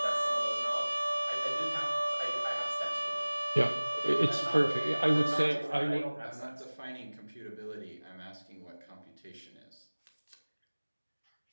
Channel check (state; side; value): inverted; both; correlation -1.00